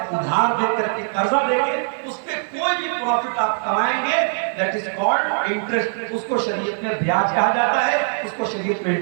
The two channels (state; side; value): silent; left; digital silence